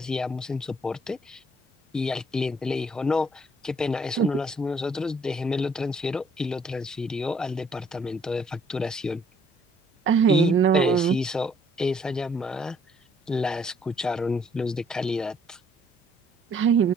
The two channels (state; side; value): normal; both; correlation 0.64